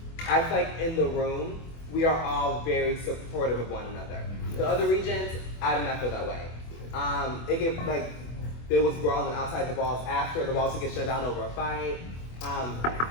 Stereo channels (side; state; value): right; late; 24 ms